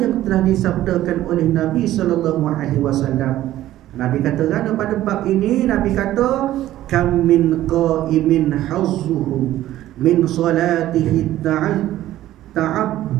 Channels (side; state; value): left; quieter; 14.0 dB